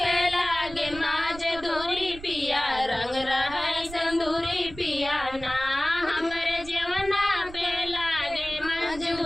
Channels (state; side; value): noise; right; rumble, 15 dB below the sound